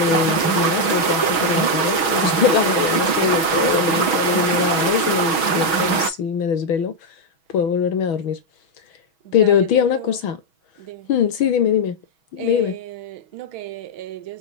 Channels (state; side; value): late; right; 6.2 ms